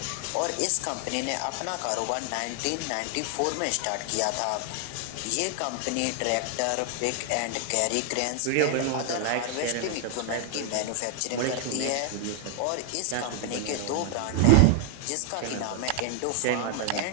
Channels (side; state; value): both; different; correlation 0.00